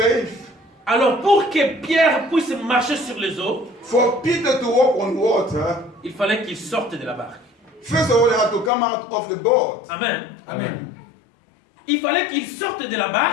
Alors pour que Pierre puisse marcher sur les eaux, For Peter to walk on water, il fallait qu'il sorte de la barque. first of all, he had to come out of the boat. Amen. Il fallait qu'il sorte de la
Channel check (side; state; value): right; drops out; at 8.7 s